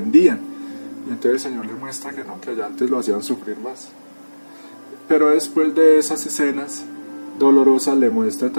Y entonces el Señor le muestra que no, que allá antes lo hacían sufrir más. Pero después de esas escenas dolorosas le muestra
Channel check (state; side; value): inverted; both; correlation -1.00